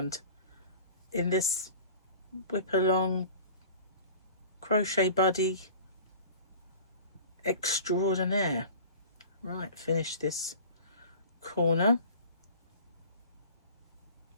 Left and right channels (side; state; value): both; inverted; correlation -0.42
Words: in this WIP Along crochet buddy extraordinaire. Right, finish this corner.